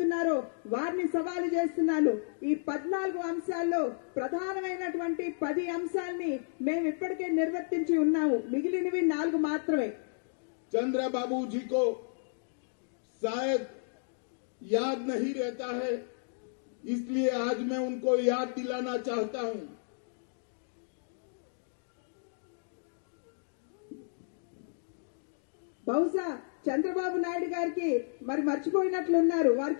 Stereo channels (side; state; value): right; silent; digital silence